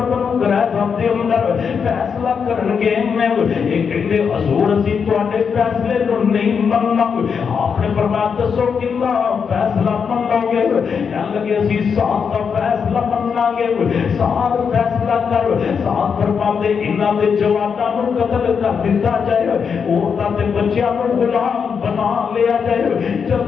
بنو قریظہ دے اندر فیصلہ کرن گے میں ایک کہندے حضور اسی تواڈے فیصلے نو نہیں مننا آپ نے فرمایا دسو کتنا فیصلہ منو گے کہن لگے اسی سعد دا فیصلہ مننا گے سعد فیصلہ کر سعد فرماندے انہاں دے جواناں نو قتل کر دتا جائے عورتاں تے بچیاں نو غلام بنا لیا جائے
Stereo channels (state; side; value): quieter; right; 6.4 dB